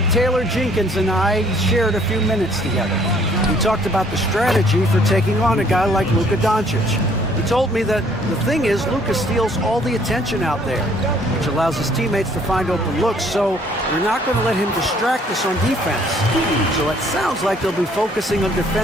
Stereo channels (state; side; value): normal; both; correlation 0.61